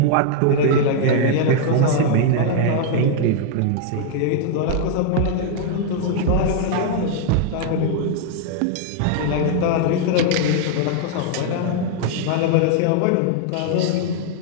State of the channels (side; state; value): both; different; correlation 0.00